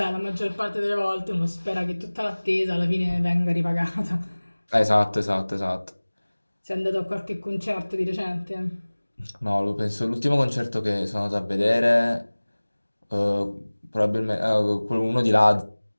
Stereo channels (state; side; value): inverted; both; correlation -1.00